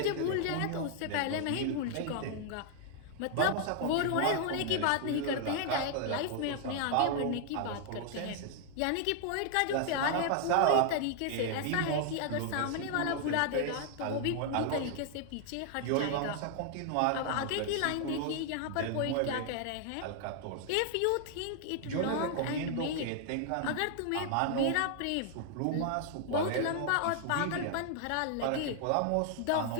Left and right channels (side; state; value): both; different; correlation 0.00